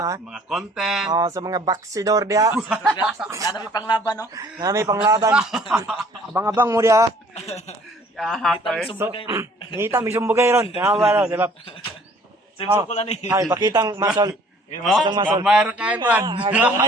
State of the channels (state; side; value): normal; both; correlation 0.56